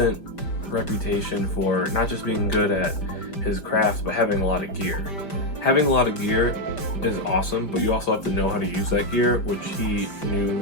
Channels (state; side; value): late; right; 5.1 ms